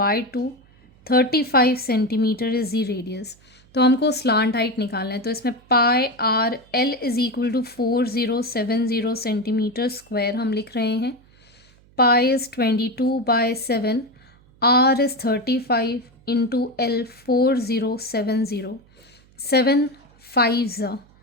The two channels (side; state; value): right; noise; hum, 29 dB below the sound